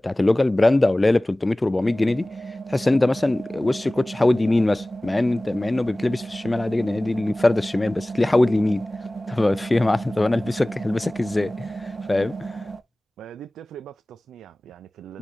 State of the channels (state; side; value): normal; both; correlation 0.98